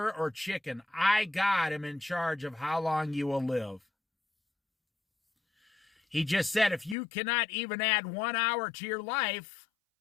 or chicken. I, God, am in charge of how long you will live. He just said if you cannot even add 1 hour to your life,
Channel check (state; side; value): drops out; right; at 7.0 s